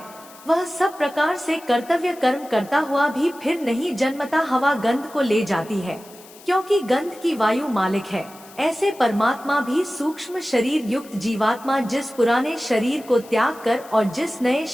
वह सब प्रकार से कर्तव्य कर्म करता हुआ भी फिर नहीं जन्मता हवा गंध को ले जाती है, क्योंकि गंध की वायु मालिक है। ऐसे परमात्मा भी सूक्ष्म शरीर युक्त जीवात्मा जिस पुराने शरीर को त्याग कर और जिस नए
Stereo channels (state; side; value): noise; left; hiss, 21 dB below the sound